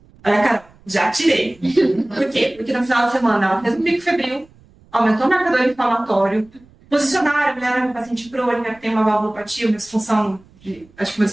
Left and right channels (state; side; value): noise; right; rumble, 28 dB below the sound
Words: Olha, cara, já tirei. Por quê? Porque no final de semana ela fez um pico febril, aumentou o marcador inflamatório, posicionaram, olharam o paciente crônica, que tem uma valvulopatia, uma disfunção, acho que uma